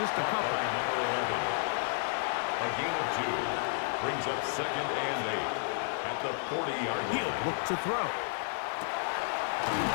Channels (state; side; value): silent; right; digital silence